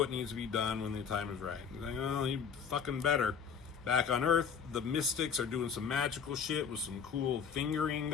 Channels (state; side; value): quieter; right; 6.7 dB